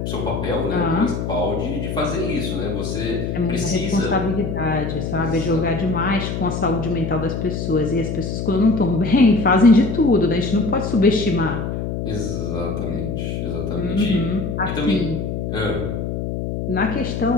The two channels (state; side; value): noise; left; hum, 3 dB below the sound